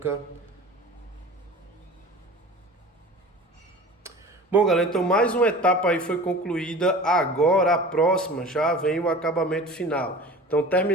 Bom, galera, então mais uma etapa aí foi concluída. Agora a próxima já vem o acabamento final. Então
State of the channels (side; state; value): both; normal; correlation 0.39